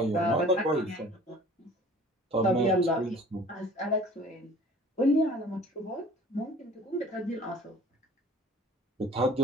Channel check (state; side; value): normal; both; correlation 0.48